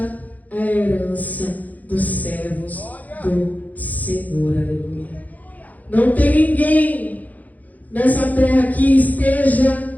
é a herança dos servos do Senhor. Aleluia. Não tem ninguém nessa terra que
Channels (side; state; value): right; late; 0.079 ms